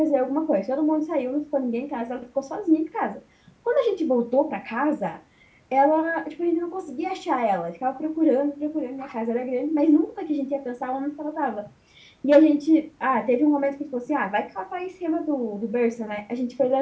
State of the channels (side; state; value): both; identical; correlation 1.00